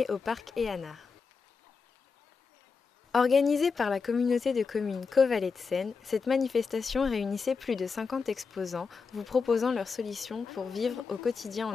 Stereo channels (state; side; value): quieter; right; 5.1 dB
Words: au parc Éanard. Organisée par la communauté de communes Caux-Vallée de Seine, cette manifestation réunissait plus de 50 exposants vous proposant leurs solutions pour vivre au quotidien